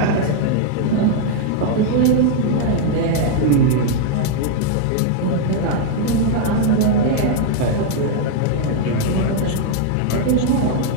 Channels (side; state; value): both; different; correlation 0.00